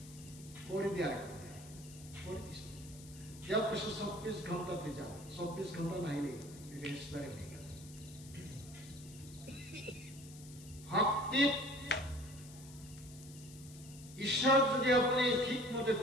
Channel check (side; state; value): left; noise; hiss, 18 dB below the sound